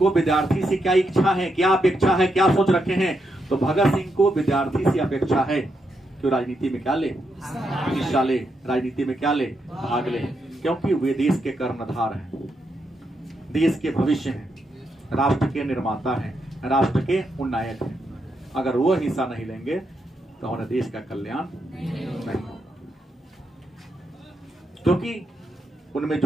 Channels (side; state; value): both; normal; correlation 0.82